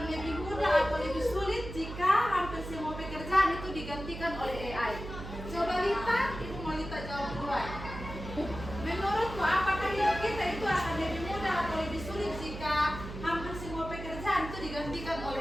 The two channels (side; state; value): right; noise; hum, 10 dB below the sound